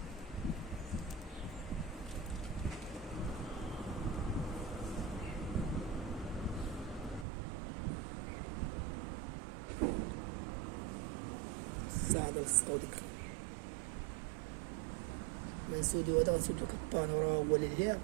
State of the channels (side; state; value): left; drops out; at 7.2 s